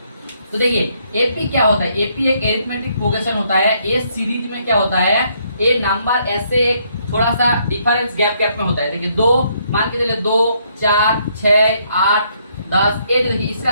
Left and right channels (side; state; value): both; inverted; correlation -0.71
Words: तो देखिए एपी क्या होता है, एपी एक एरिथमेटिक प्रोग्रेशन होता है, एस सीरीज में क्या होता है, ए नंबर ऐसे एक थोड़ा सा डिफरेंस गैप में होता है। देखिए 2 मान के चलिए 2 4 6 8 10, ये देखिए इसका